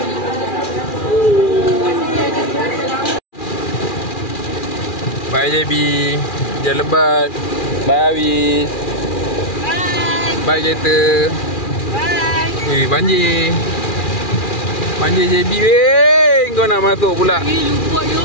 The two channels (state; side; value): late; right; 2.4 ms